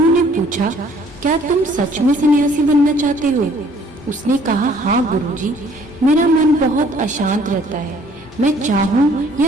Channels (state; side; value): normal; both; correlation 0.59